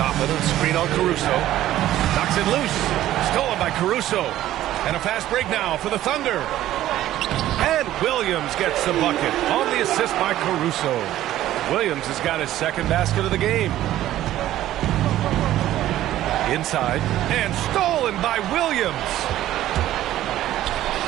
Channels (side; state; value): left; quieter; 13.6 dB